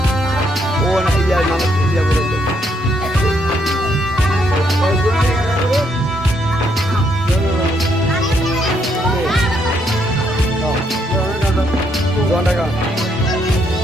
वो ना इया ना इया बोले जोन लगा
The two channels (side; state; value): both; normal; correlation 0.73